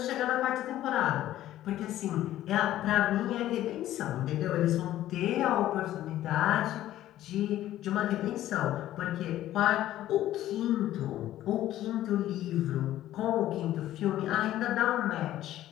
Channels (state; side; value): quieter; right; 13.5 dB